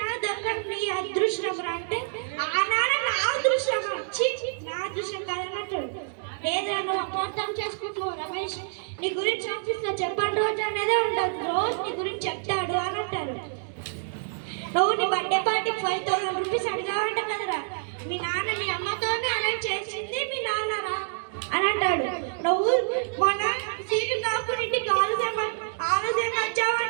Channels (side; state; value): left; silent; digital silence